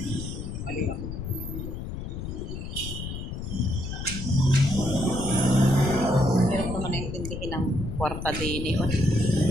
Mali ako. Hirap naman naintindihin ng kwarta din eh.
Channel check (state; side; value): noise; left; rumble, 6 dB below the sound